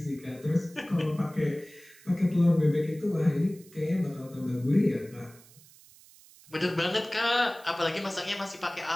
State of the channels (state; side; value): noise; right; hiss, 24 dB below the sound